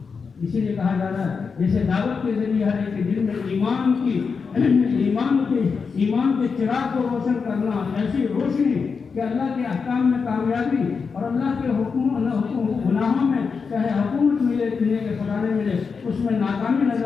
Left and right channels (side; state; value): right; quieter; 5.4 dB